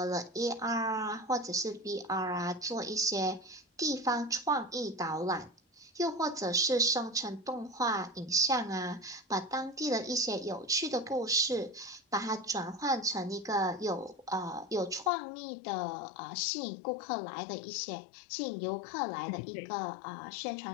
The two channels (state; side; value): drops out; right; at 15.1 s